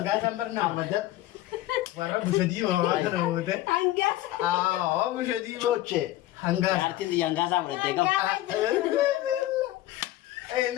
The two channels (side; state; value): right; quieter; 15.4 dB